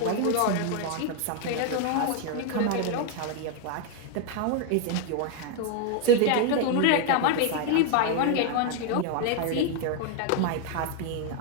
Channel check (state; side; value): different; both; correlation 0.00